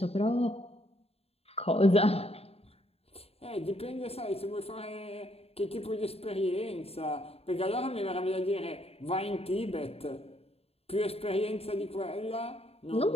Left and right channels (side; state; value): right; late; 0.29 ms